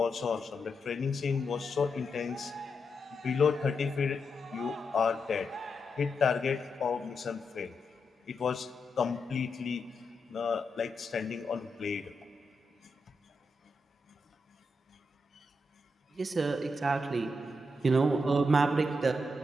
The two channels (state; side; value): normal; both; correlation 0.84